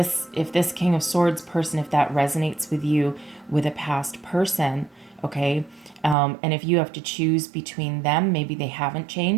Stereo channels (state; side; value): drops out; left; at 6.2 s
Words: King of Swords person, if that resonates with you with a past person, okay, and if you have to choose between them, maybe they haven't